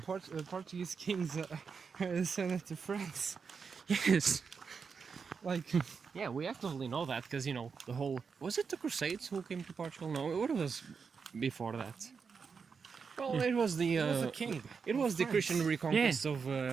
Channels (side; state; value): left; quieter; 5.7 dB